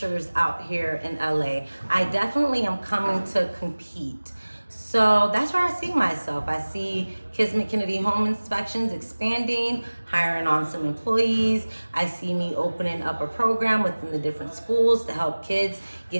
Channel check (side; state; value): both; inverted; correlation -1.00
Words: out here in LA. I definitely am coming to compete. So that's where I see myself. I see Kismet Kennedy Home Inspections expanding, hiring on some employees. I see me opening up a program within the different schools to help kids